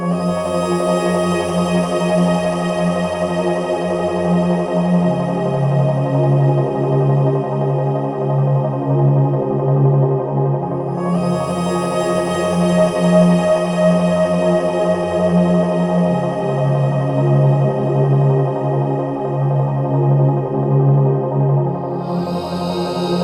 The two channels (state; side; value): identical; both; correlation 1.00